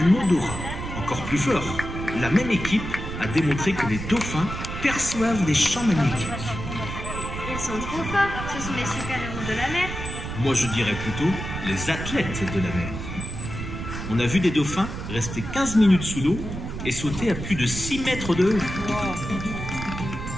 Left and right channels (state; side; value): noise; right; rumble, 7 dB below the sound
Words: odorat. Encore plus fort, la même équipe a démontré que les dauphins perçoivent des champs magnétiques. Ils sont trop forts, ce sont les super-héros de la mer. Moi je dirais plutôt les athlètes de la mer. On a vu des dauphins rester 15 minutes sous l'eau et sauter à plus de 6 mètres de haut.